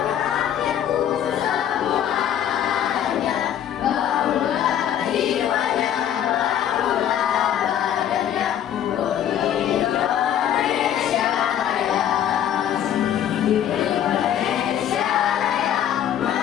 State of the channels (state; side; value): quieter; right; 10.2 dB